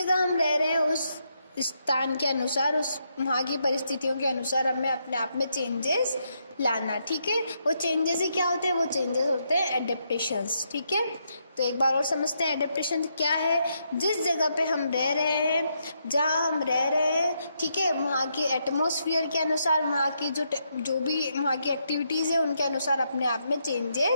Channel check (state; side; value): inverted; both; correlation -0.79